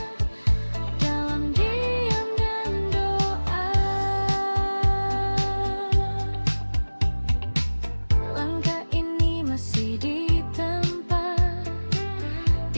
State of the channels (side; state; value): both; inverted; correlation -1.00